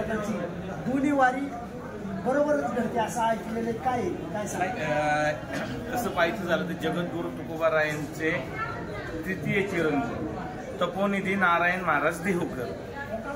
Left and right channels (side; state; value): both; identical; correlation 1.00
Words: दोन्ही वारी बरोबरच घडते असं ऐकलेलं काय तसं पाहायचं झालं तर जगद्गुरू तुकोबारायांचे तृतीय चिरंजीव तपोनिधी नारायण महाराज देहूकर,